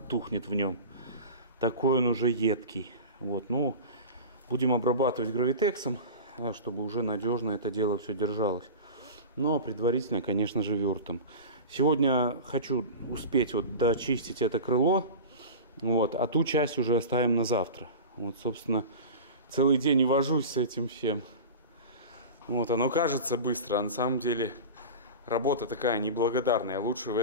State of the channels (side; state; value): both; inverted; correlation -0.31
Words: тухнет в нем. Такой он уже едкий. Вот, ну, будем обрабатывать гравитексом, чтобы уже надежно это дело все держалось. Но предварительно, конечно же, вюртом. Сегодня хочу успеть вот дочистить это крыло. Вот, а ту часть уже оставим на завтра. Вот, собственно, целый день и вожусь с этим всем. Вот, оно кажется быстро, а на самом деле работа такая неблагодарная. Лучше в